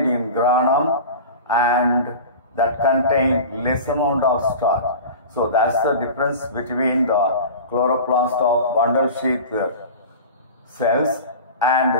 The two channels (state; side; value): inverted; both; correlation -0.34